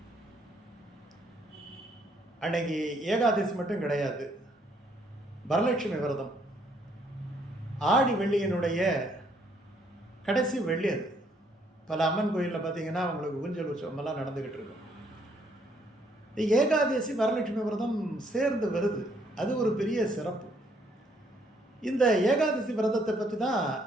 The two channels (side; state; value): both; normal; correlation 0.68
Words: அன்னைக்கு ஏகாதசி மட்டும் கிடையாது, வரலட்சுமி விரதம். ஆடி வெள்ளியினுடைய கடைசி வெள்ளி அது. பல அம்மன் கோயிலில் பார்த்தீங்கன்னா அவங்களுக்கு ஊஞ்சல் உற்சவமெல்லாம் நடந்துக்கிட்டு இருக்கும். ஏகாதசி வரலட்சுமி விரதம் சேர்ந்து வருது, அது ஒரு பெரிய சிறப்பு. இந்த ஏகாதசி விரதத்தை பற்றி தான்